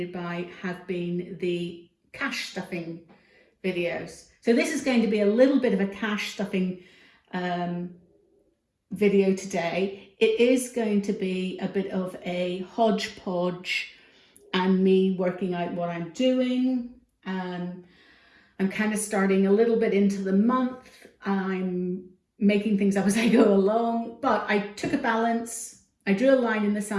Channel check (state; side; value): identical; both; correlation 1.00